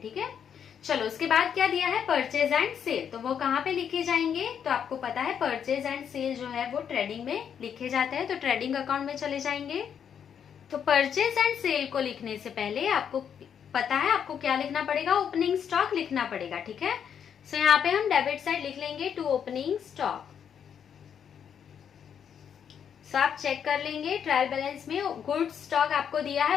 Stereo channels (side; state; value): right; quieter; 8.1 dB